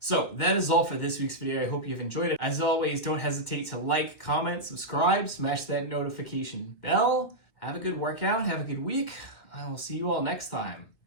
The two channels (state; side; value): late; right; 2.3 ms